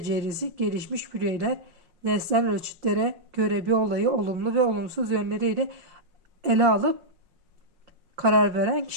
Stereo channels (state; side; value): late; left; 5.5 ms